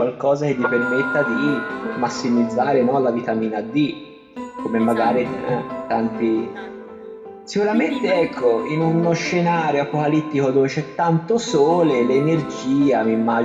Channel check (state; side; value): identical; both; correlation 1.00